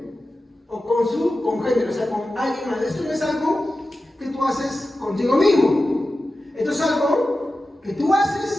o con su congénero, o sea, con alguien más. Esto no es algo que tú haces contigo mismo. Esto es algo que tú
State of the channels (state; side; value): normal; both; correlation 0.93